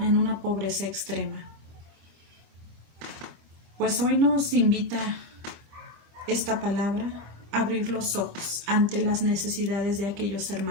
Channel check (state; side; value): late; left; 25 ms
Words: pobreza extrema. Pues hoy nos invita esta palabra a abrir los ojos ante las necesidades de aquellos